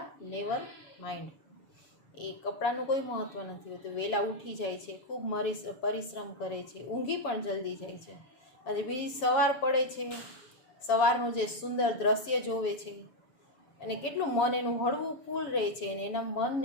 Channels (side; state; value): right; late; 7.2 ms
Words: નેવર માઇન્ડ. એ કપડાનું કોઈ મહત્ત્વ નથી હોતું. વહેલા ઉઠી જાય છે, ખૂબ પરિશ્રમ કરે છે, ઊંઘી પણ જલ્દી જાય છે. અને બીજી સવાર પડે છે, સવારનું જે સુંદર દ્રશ્ય જોવે છે, અને કેટલું મન એનું હળવું ફૂલ રહે છે, અને એના મન